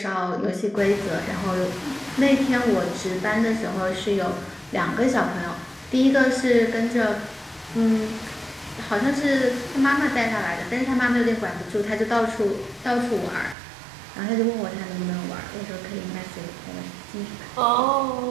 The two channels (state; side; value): drops out; left; at 13.6 s